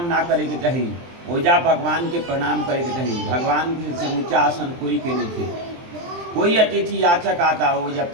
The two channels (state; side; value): late; left; 23 ms